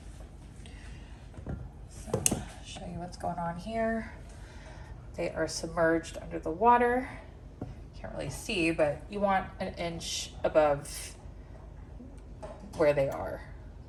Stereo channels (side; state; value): both; identical; correlation 1.00